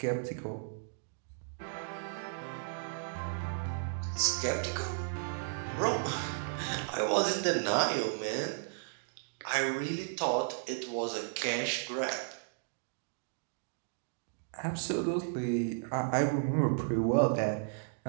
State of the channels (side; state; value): left; silent; digital silence